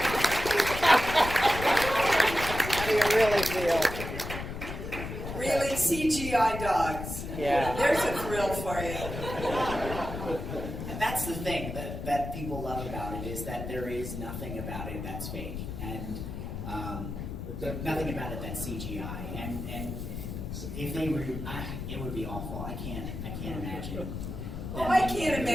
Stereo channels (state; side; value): noise; left; rumble, 7 dB below the sound